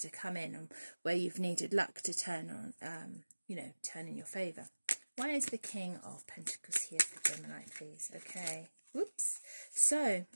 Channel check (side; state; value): both; inverted; correlation -1.00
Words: to come in, and where you've needed luck to turn on, you know, turn in your favour. Why is the King of Pentacles here for Gemini, please? Okay. Whoops. So,